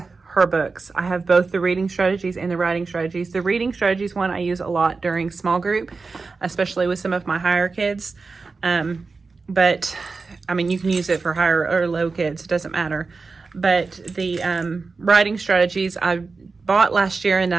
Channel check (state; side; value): quieter; left; 4.2 dB